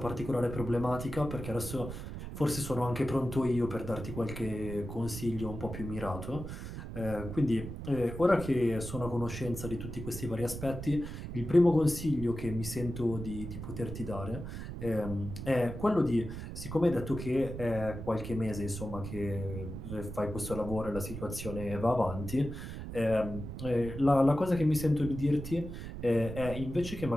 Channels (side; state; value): right; noise; rumble, 8 dB below the sound